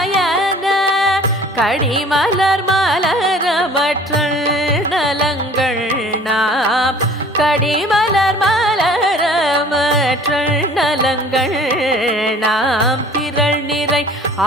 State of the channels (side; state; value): both; normal; correlation 0.49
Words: கடிமலர் மலரமற்றல் நலங்கள் நாம் கடிமலர் மலரமற்றல் நலங்கள் நாம் திரள் நிறை